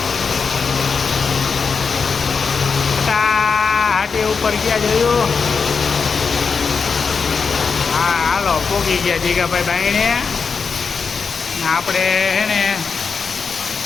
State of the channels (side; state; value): right; quieter; 5.4 dB